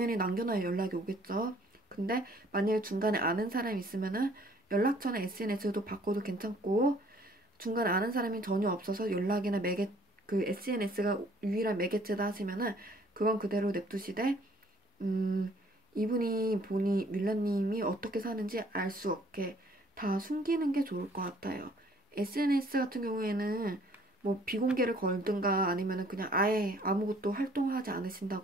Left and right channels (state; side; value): normal; both; correlation 0.59